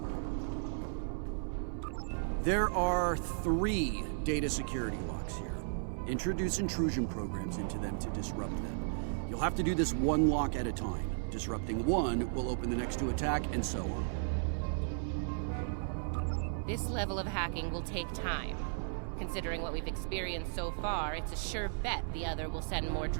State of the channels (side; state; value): left; silent; 54 dB below the other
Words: There are 3 data security locks here. Introduce intrusion programs into them to disrupt them. You'll have to do this one lock at a time. Disrupting one will open the next to attack, and so on. This level of hacking will take time. Considering what we've experienced so far, it's a sure bet the other will send more